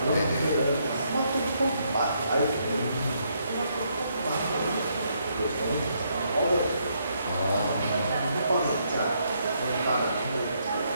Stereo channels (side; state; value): both; inverted; correlation -0.74